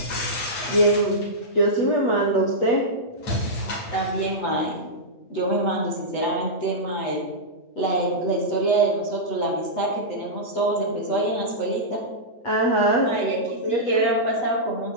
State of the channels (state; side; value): late; right; 8.1 ms